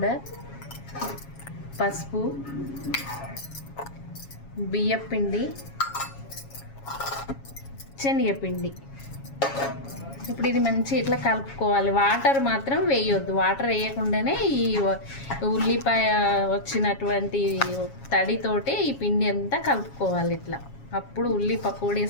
పసుపు, బియ్యపిండి, శనగపిండి. ఇప్పుడు ఇది మంచి ఇట్లా కలుపుకోవాలి. వాటర్ మాత్రం వేయొద్దు. వాటర్ వేయకుండానే ఈ ఉల్లిపాయ వచ్చినటువంటి తడితోటి ఈ పిండి అంతా కలుపుకోవాలి ఇట్లా. అప్పుడు ఉల్లి పకోడీ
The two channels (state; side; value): late; right; 7.3 ms